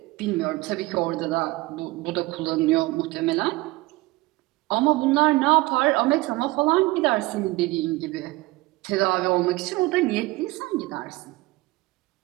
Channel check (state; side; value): quieter; left; 20.9 dB